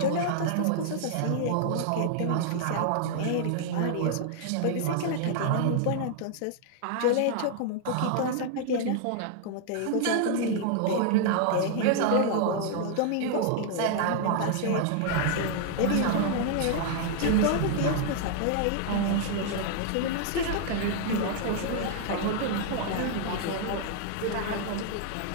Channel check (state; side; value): different; both; correlation 0.00